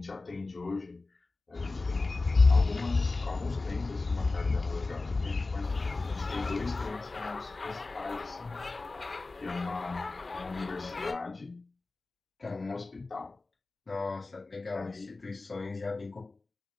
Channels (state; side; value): quieter; right; 3.5 dB